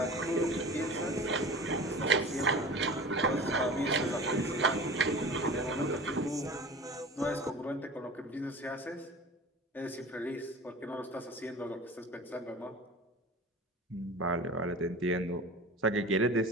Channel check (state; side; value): normal; both; correlation 0.37